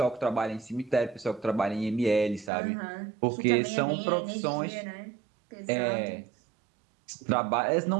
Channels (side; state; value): left; drops out; at 2.5 s